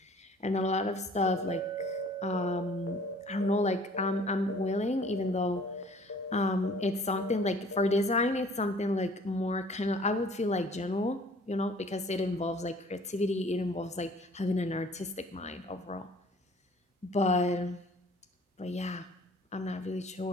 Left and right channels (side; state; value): both; normal; correlation 0.53